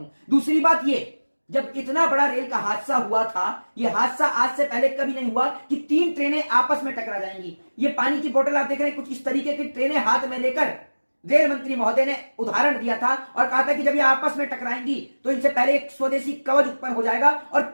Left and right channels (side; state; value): both; inverted; correlation -1.00